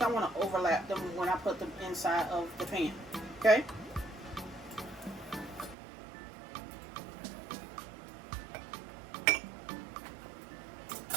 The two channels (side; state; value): left; drops out; at 5.8 s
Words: I want to overlap them when I put them inside of the pan, okay?